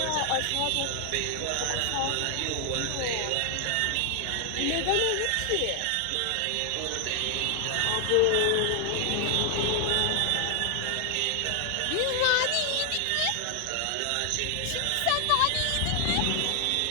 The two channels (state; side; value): different; both; correlation 0.00